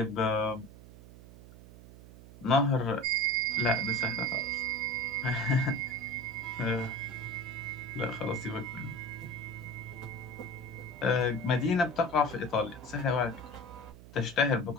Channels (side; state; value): right; noise; hum, 18 dB below the sound